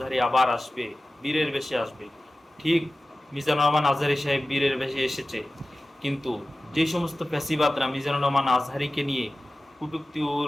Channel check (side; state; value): both; normal; correlation 0.95